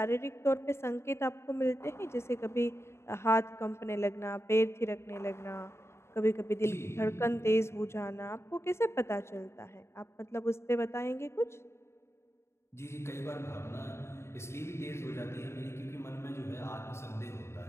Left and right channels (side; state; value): right; late; 0.13 ms